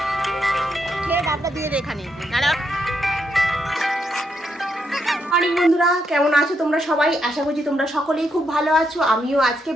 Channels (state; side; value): normal; both; correlation 0.79